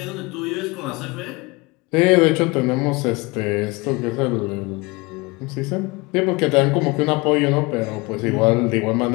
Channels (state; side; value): quieter; right; 25.1 dB